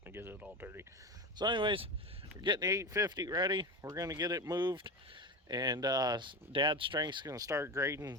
and get it all dirty. So anyways, we're getting the 850 ready. We're going to get it moved. And Dad's strength's going to start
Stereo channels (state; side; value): normal; both; correlation 0.21